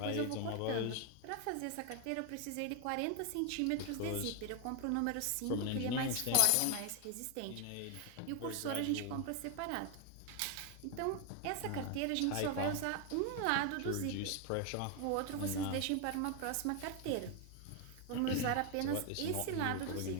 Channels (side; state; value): both; different; correlation 0.01